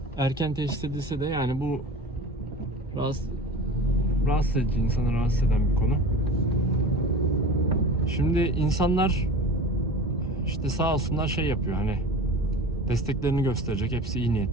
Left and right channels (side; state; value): both; normal; correlation 0.35